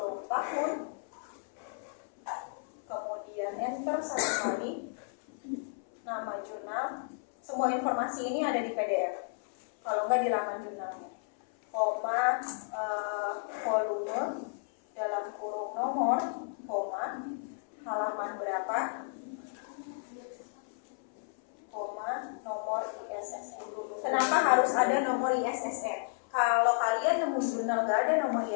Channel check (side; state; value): right; silent; 56 dB below the other